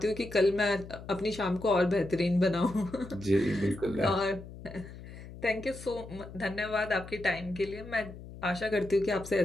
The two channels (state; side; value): noise; left; hum, 14 dB below the sound